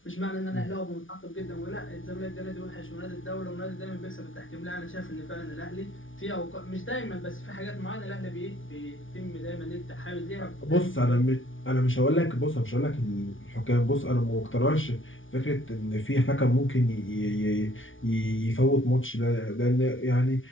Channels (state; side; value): late; right; 0.57 ms